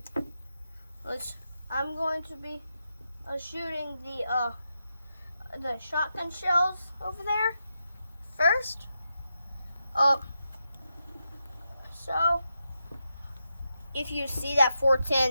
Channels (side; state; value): both; inverted; correlation -0.87